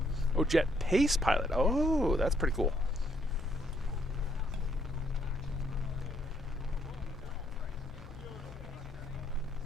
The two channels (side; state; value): left; noise; hum, 16 dB below the sound